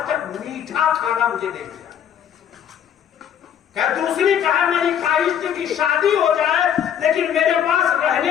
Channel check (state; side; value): quieter; right; 9.1 dB